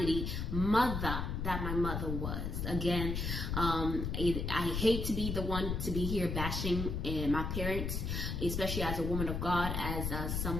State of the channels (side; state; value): left; noise; rumble, 2 dB below the sound